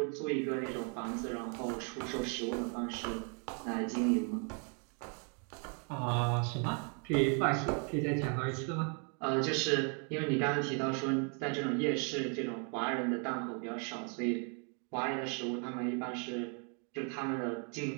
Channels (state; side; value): quieter; left; 38.9 dB